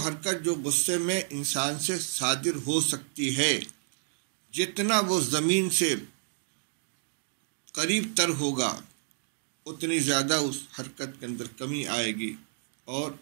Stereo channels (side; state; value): left; silent; digital silence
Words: جو غصے میں انسان سے صادر ہو سکتی ہے، جتنا وہ زمین سے قریب تر ہوگا اتنی زیادہ اس حرکت کے اندر کمی آئے گی، اور